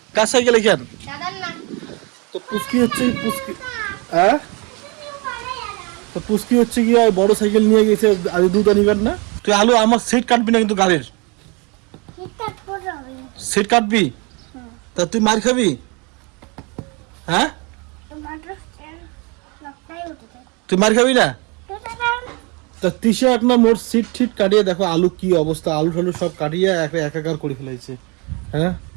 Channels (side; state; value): left; quieter; 29.9 dB